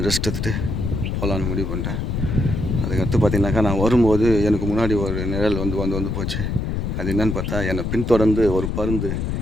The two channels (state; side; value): noise; left; rumble, 2 dB below the sound